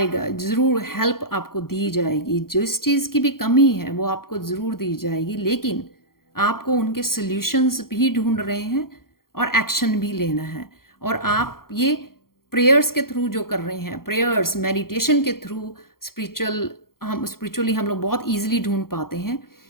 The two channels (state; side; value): late; right; 0.92 ms